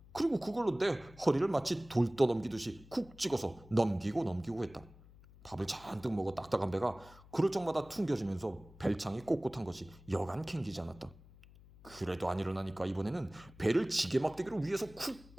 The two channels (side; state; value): left; noise; hum, 22 dB below the sound